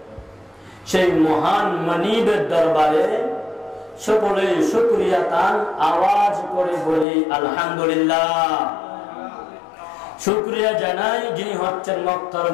সেই মহান মানিবের দরবারে সকলে শুকরিয়া তান আওয়াজ করে বলি আলহামদুলিল্লাহ। শুকরিয়া জানাই যিনি হচ্ছেন মক্কার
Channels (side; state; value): right; drops out; at 7.1 s